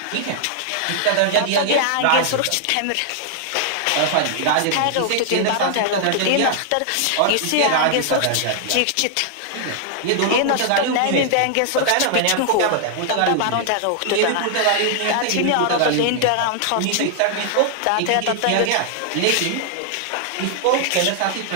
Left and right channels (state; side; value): different; both; correlation -0.01